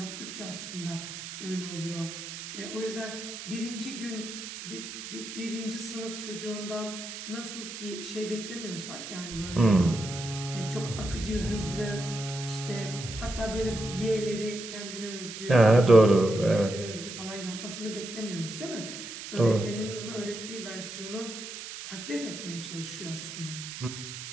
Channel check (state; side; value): noise; right; hiss, 9 dB below the sound